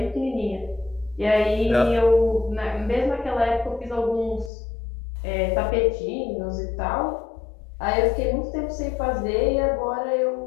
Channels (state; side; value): drops out; right; at 4.5 s